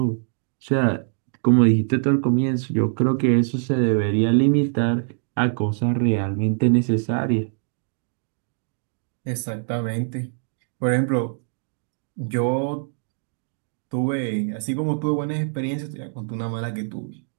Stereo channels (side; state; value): left; silent; digital silence